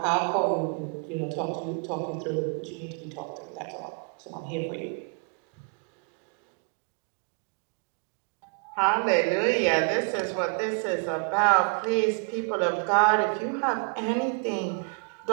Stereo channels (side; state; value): left; quieter; 37.4 dB